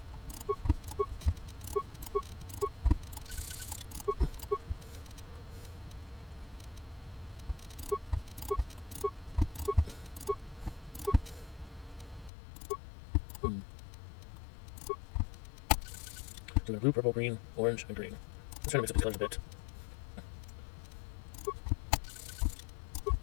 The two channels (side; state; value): right; drops out; at 12.3 s